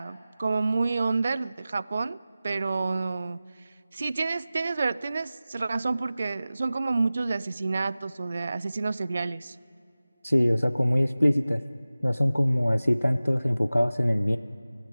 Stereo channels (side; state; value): both; inverted; correlation -0.96